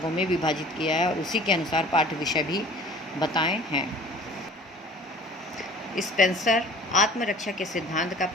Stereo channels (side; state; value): both; normal; correlation 0.47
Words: में विभाजित किया है और उसी के अनुसार पाठ्य विषय भी बताए हैं। स्पेंसर आत्मरक्षा के सिद्धांत का